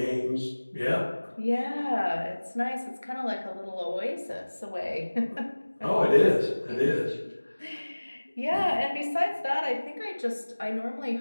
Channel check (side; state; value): both; inverted; correlation -1.00